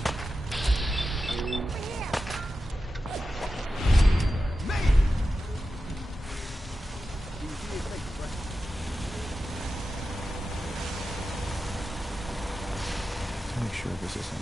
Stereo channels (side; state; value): both; normal; correlation 0.92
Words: To make sure this is on